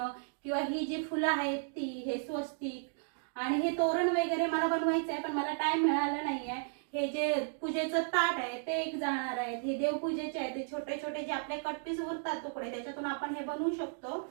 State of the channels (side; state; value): left; silent; digital silence